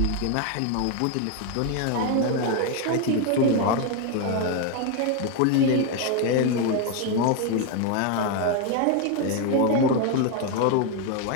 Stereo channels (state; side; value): different; both; correlation 0.01